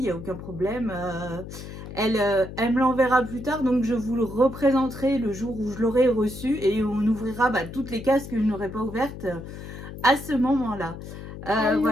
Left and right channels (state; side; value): noise; left; hum, 11 dB below the sound